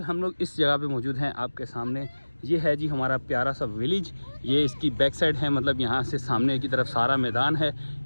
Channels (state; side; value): inverted; both; correlation -1.00